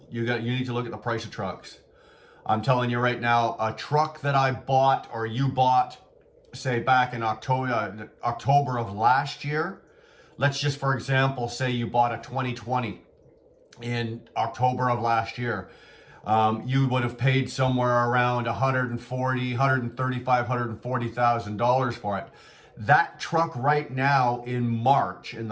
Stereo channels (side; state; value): both; identical; correlation 1.00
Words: You need to look at the price of trucks. I'm telling you right now, a truck that I bought or you bought, say back in October of last year, let's just for example say you bought a 2020 in October of last year, you would have paid somewhere around $140,000 for it. That truck right now in March, in